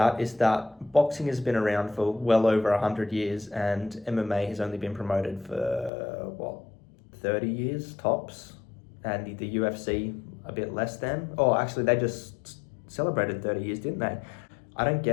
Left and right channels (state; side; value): drops out; right; at 5.9 s